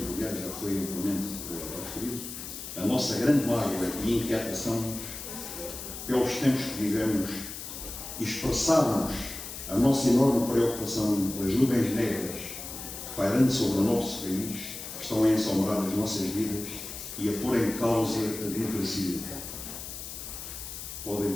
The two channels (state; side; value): noise; left; hiss, 9 dB below the sound